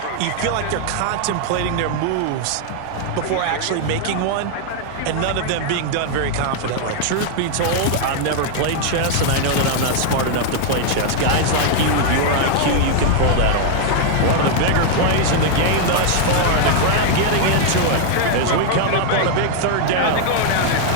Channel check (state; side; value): different; both; correlation 0.00